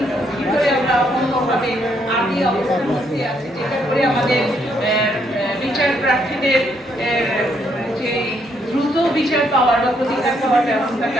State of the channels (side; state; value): both; normal; correlation 0.73